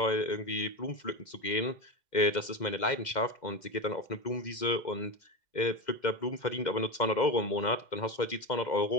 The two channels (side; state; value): right; late; 2.1 ms